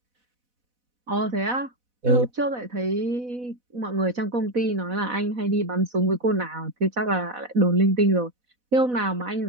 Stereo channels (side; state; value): left; late; 4.1 ms